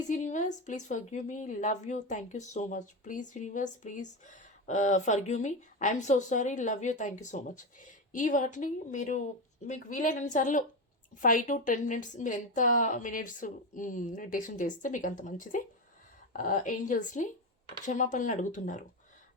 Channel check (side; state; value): both; normal; correlation 0.15